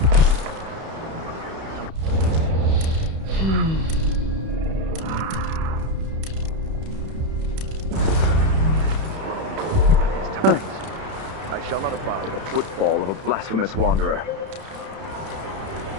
I shall not abide the footfall of a blasphemous wanderer.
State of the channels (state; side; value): late; left; 31 ms